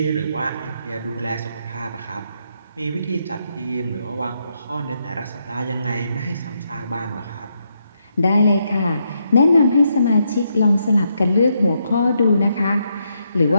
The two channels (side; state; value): both; inverted; correlation -0.79